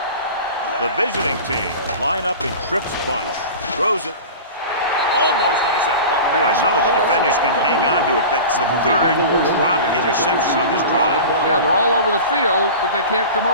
The visiting team line up in trips bunch. Throws it. Almost intercepted. Boy, none of the defenders can hang on to it. That's the third drop interception on this drive. Yeah, they're all over the field, but they can't come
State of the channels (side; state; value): both; inverted; correlation -0.34